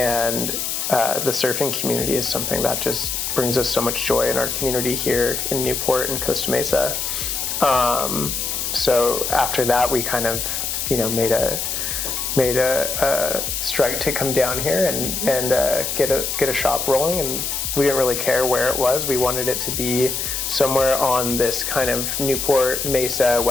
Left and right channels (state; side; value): noise; left; hiss, 2 dB below the sound